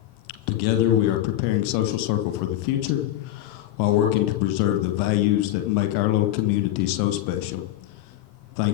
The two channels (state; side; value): quieter; right; 13.7 dB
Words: Together, we are preparing Social Circle for the future, while working to preserve the values that make our little community so special.